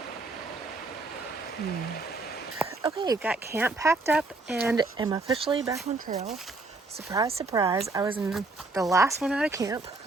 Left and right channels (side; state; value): left; quieter; 3.4 dB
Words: Okay, got camp packed up and am officially back on trail. Surprise, surprise, I was in the last one out of camp.